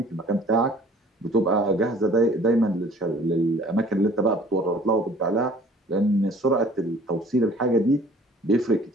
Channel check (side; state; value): both; normal; correlation 0.52